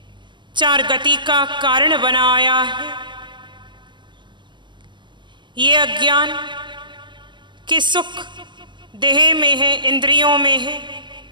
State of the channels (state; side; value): late; left; 0.23 ms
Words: चार गति का कारण बनाया है, ये अज्ञान कि सुख देह में है, इंद्रियों में है,